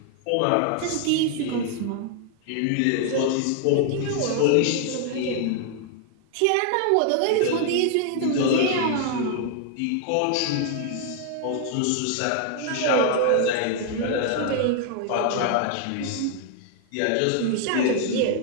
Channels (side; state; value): both; different; correlation 0.00